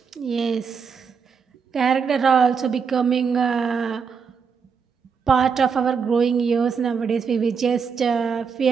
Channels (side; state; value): left; quieter; 6.0 dB